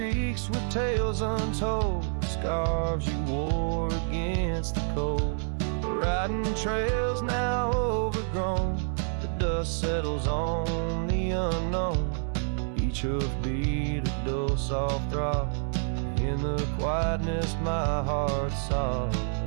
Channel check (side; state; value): left; silent; 59 dB below the other